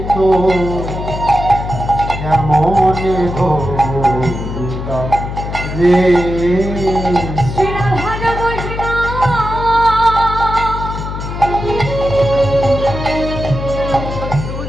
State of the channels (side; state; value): left; noise; hum, 6 dB below the sound